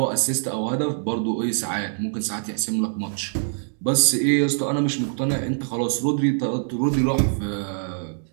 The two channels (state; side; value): silent; left; digital silence